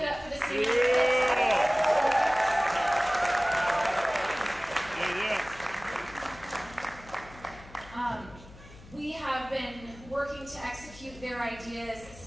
it up for the seniors. We have been working to execute their ideas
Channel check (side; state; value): left; noise; hum, 19 dB below the sound